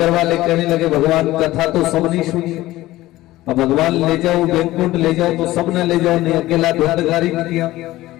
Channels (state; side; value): quieter; right; 16.8 dB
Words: वाले कहने लगे भगवान कथा तो सब नहीं सुनी, अब भगवान ले जाओ बैकुंठ ले जाओ तो सब न ले जाओ, नहीं अकेला धुंधकारी नहीं किया।